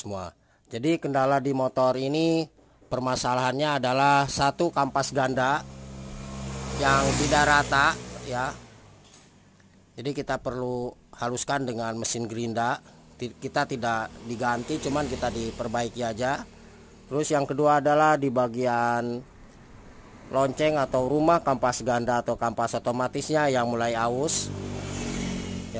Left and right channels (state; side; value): identical; both; correlation 1.00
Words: Jadi kendala di motor ini permasalahannya adalah satu, kampas ganda yang tidak rata ya. Jadi kita perlu haluskan dengan mesin gerinda. Kita tidak diganti, cuman kita diperbaiki aja. Terus yang kedua adalah di bagian lonceng atau rumah, kampas ganda atau kampas otomatisnya yang mulai aus